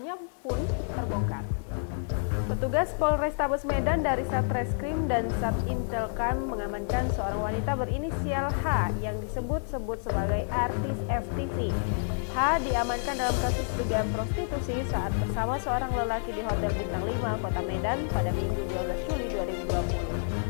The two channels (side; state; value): right; silent; digital silence